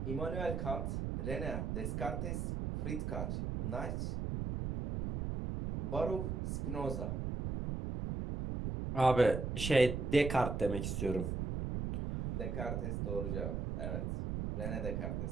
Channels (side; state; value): right; noise; rumble, 2 dB below the sound